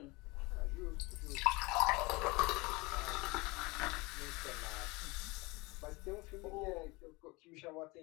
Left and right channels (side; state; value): right; quieter; 24.6 dB